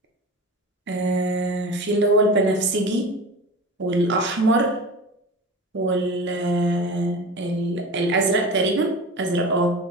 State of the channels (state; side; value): normal; both; correlation 0.32